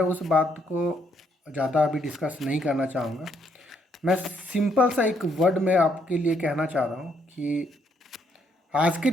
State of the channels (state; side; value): normal; both; correlation 0.71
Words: उस बात को ज़्यादा अभी डिस्कस नहीं करना चाहूँगा। मैं सिंपल सा एक वर्ड में आपके लिए कहना चाह रहा हूँ कि आज के